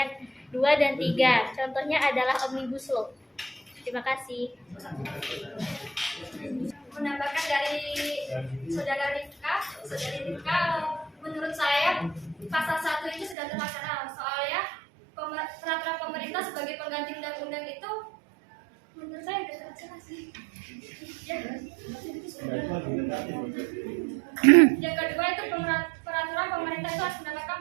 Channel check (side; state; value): left; drops out; at 13.4 s